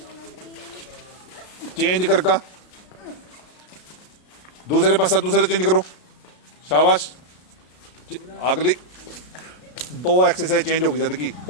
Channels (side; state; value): right; late; 33 ms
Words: करका, दूसरे पास दूसरे चेंज करो, शाबाश। अगली 2 एक्सरसाइज चेंज होगी जद की,